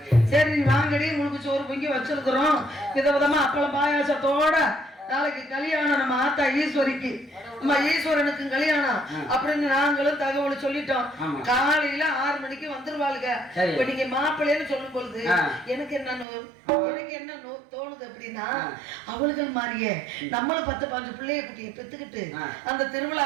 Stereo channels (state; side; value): drops out; left; at 16.2 s